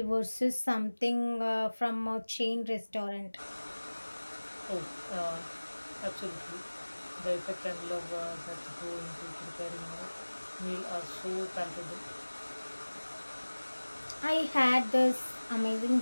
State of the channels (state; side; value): inverted; both; correlation -1.00